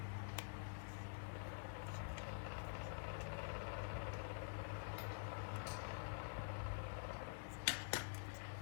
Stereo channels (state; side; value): silent; right; digital silence